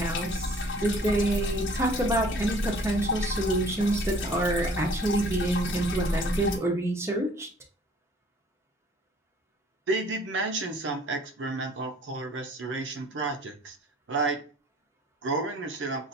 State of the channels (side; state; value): both; normal; correlation 0.54